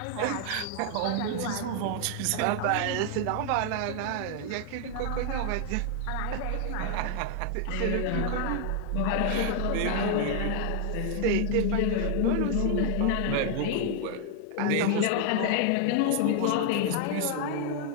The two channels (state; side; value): different; both; correlation 0.00